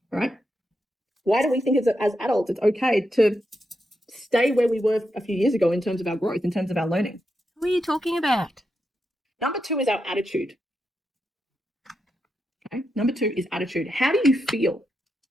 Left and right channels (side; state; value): both; normal; correlation 0.85